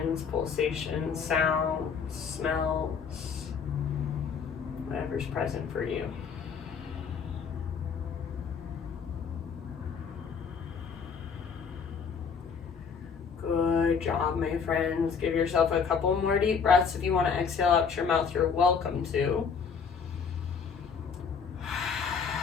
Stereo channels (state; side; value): quieter; right; 6.1 dB